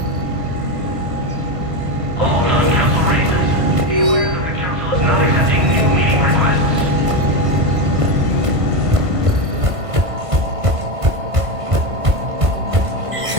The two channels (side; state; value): left; late; 1.5 ms